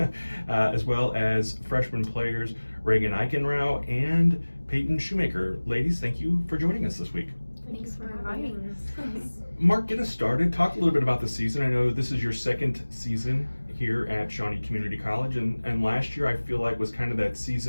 As well as freshman players Regan Eigenrauch and Payton Shoemaker. Ladies, thank you for joining us this week. Thanks for inviting us. Mark, get us started. Talk a little bit about the season. I know this is your second season here at Shawnee Community College, and last year I feel like was kind of that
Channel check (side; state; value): both; inverted; correlation -1.00